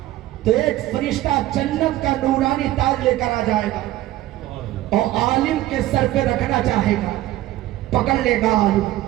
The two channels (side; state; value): left; quieter; 15.2 dB